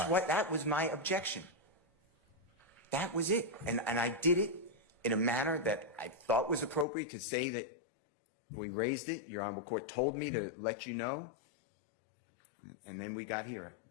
right. what, that was my objection. That was it. And I did it in a manner that I thought was appropriate to say that we raised it. Your Honorable Court told me to let you know. And then we got here.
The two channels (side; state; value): right; drops out; at 6.9 s